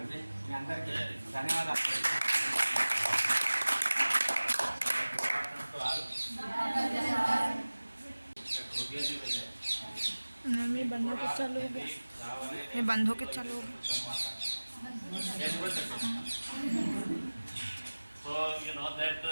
మీ అందరికీ ధన్యవాదాలు. ये बंद होके चालू हो गया, ये बंद होके चालू हो गया. So you know that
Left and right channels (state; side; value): inverted; both; correlation -1.00